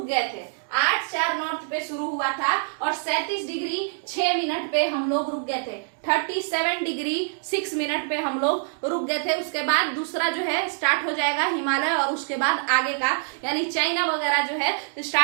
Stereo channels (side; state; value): left; silent; digital silence